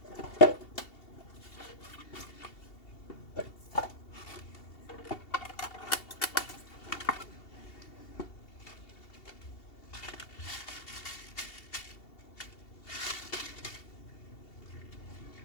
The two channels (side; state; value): right; late; 2.7 ms